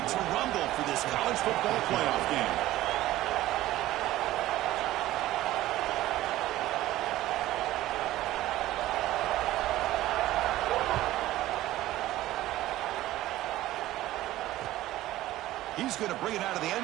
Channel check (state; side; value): quieter; left; 15.5 dB